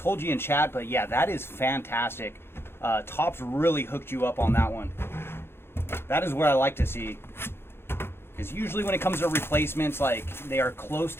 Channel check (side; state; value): right; late; 0.11 ms